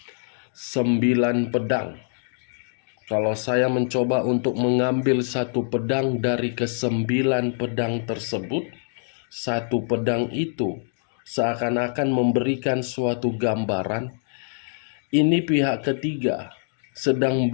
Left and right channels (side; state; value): right; silent; digital silence